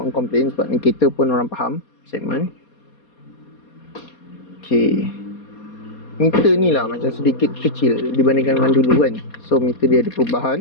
komplain, sebab ni kereta pun orang faham segmen. Okay, meter ni lah macam sedikit kecil dibandingkan dengan dulu kan. So meter dia ada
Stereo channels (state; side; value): late; right; 4.2 ms